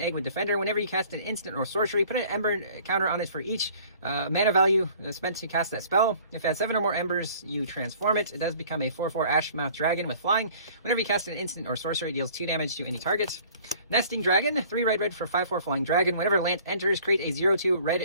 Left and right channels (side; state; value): both; inverted; correlation -0.52